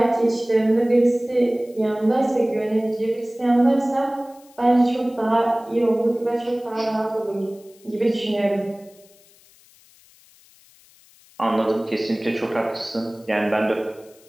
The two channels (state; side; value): noise; left; hiss, 28 dB below the sound